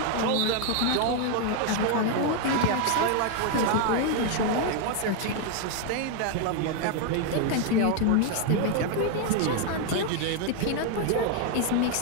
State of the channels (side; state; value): both; different; correlation 0.01